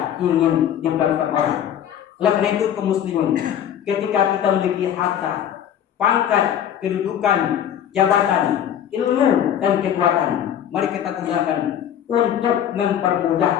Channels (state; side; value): quieter; right; 9.9 dB